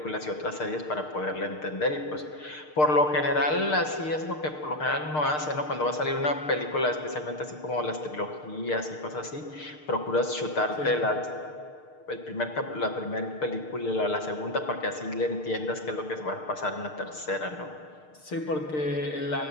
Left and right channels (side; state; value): right; late; 6.6 ms